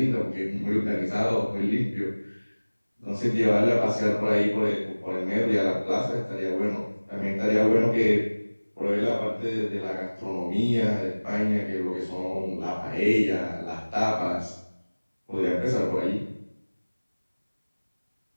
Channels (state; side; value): inverted; both; correlation -1.00